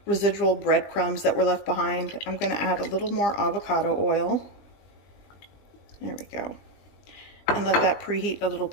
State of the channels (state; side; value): late; right; 20 ms